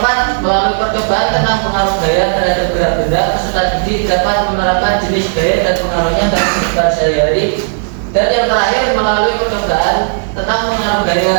melalui percobaan tentang pengaruh gaya terhadap gerak benda, peserta didik dapat menerapkan jenis gaya dan pengaruhnya dalam kehidupan sehari-hari. Dan yang terakhir, melalui percobaan tentang pengaruh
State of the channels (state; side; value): silent; left; digital silence